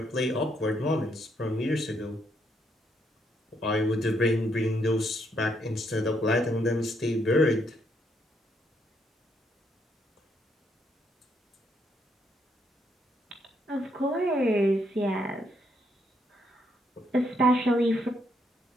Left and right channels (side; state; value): both; normal; correlation 0.74